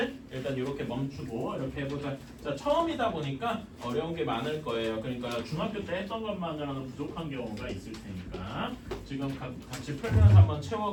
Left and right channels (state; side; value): identical; both; correlation 1.00